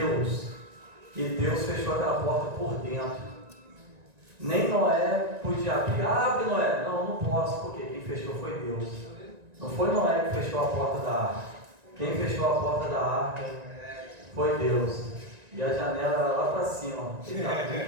E Deus fechou aquela porta por dentro. Nem Noé podia abrir. Abre, Noé. Não posso, porque quem fechou foi Deus. Não foi Noé que fechou a porta da arca. Quem fechou a porta da arca foi Deus. E a janela era lá para cima. Quem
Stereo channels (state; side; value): late; left; 1.9 ms